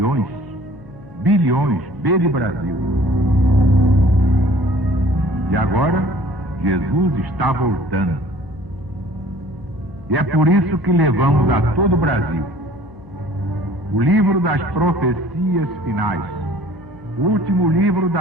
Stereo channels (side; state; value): left; noise; hum, 22 dB below the sound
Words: Bilhões, B de Brasil. E agora, Jesus está voltando. E é por isso que levamos a todo o Brasil o livro das profecias finais, o último livro